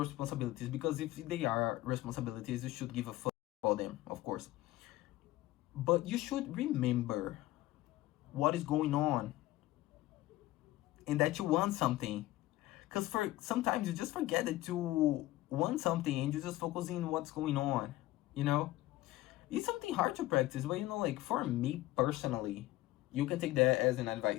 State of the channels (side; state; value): right; quieter; 16.9 dB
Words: because if they are responsibilities, you should give a fuck about them, of course. But you should remember what is going on and that you want something. Because sometimes you just forget that you want something and you just focus on what's going on, It's something hard to practice, but like for me personally, you can take that as an